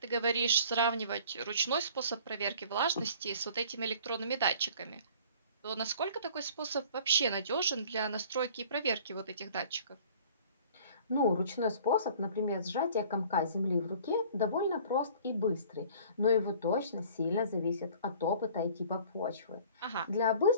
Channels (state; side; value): inverted; both; correlation -0.49